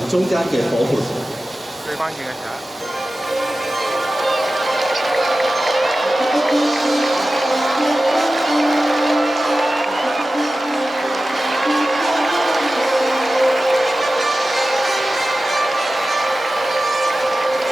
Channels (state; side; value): normal; both; correlation 0.95